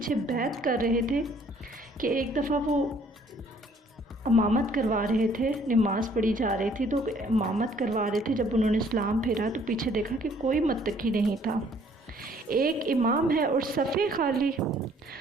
بیعت کر رہے تھے، کہ ایک دفعہ وہ امامت کروا رہے تھے، نماز پڑھی جا رہی تھی تو امامت کروا رہے تھے، جب انہوں نے اسلام پھیرا تو پیچھے دیکھا کہ کوئی متقی نہیں تھا، ایک امام ہے اور صفے خالی۔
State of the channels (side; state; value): both; normal; correlation 0.60